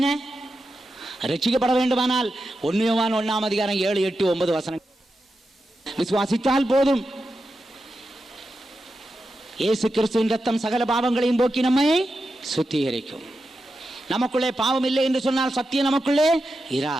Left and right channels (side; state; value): both; normal; correlation 0.90